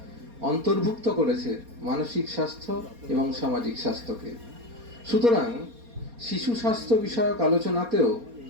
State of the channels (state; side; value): late; left; 4.2 ms